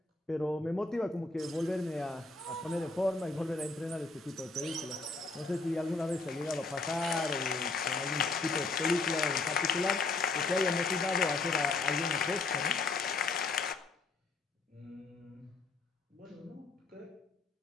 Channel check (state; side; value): quieter; right; 3.7 dB